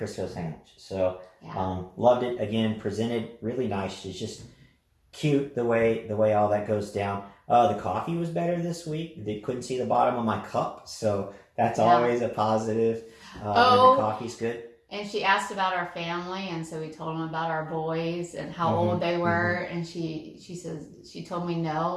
sandwich. So Yeah. loved it. Again, presented really nice. It's just cute the way all that goes down. The coffee was better this week. They couldn't see the bottom of my cup, so that's always a positive. When the coffee's good. And she asked about our family, and so we told them about our boys and how old they were. And she says she told me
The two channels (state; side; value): identical; both; correlation 1.00